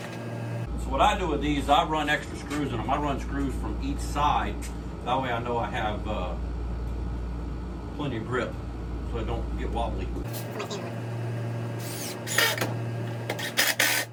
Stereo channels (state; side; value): identical; both; correlation 1.00